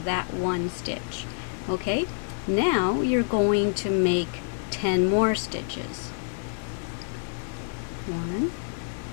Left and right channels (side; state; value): right; silent; digital silence